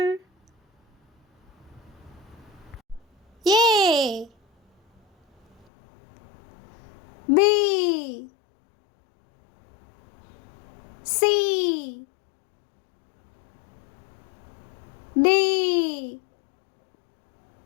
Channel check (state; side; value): drops out; right; at 5.7 s